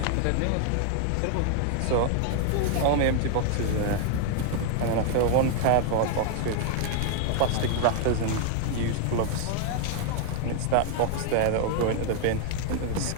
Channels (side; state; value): both; different; correlation 0.00